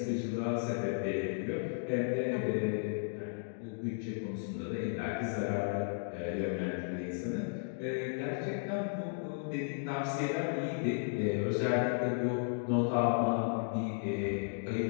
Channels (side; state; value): right; silent; digital silence